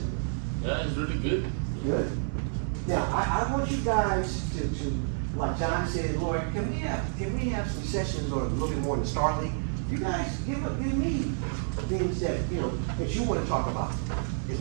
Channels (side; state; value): left; silent; digital silence